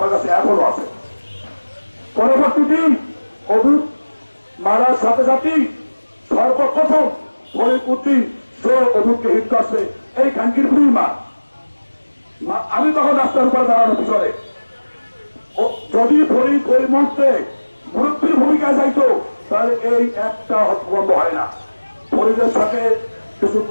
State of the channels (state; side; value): inverted; both; correlation -1.00